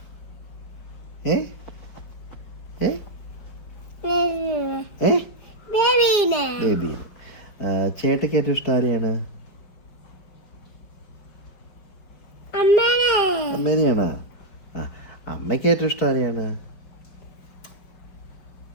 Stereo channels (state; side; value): late; right; 5.0 ms